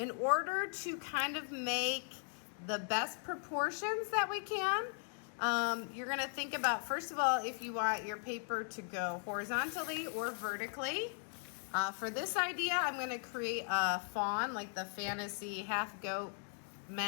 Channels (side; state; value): right; silent; 52 dB below the other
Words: order to kind of make the best proportions that we can, you're going to think about, first of all, if you want your paper to go horizontally or vertically. For this idea, I'm going to create a fawn, like the fantasy half goat